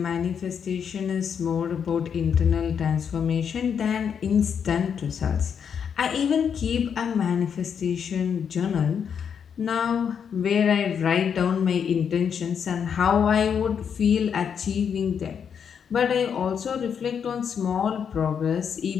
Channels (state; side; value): quieter; right; 7.4 dB